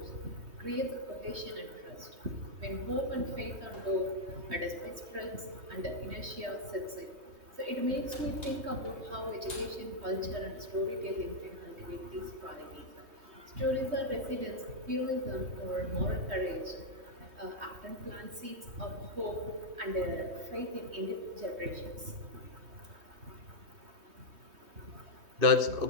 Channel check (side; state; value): left; late; 3.2 ms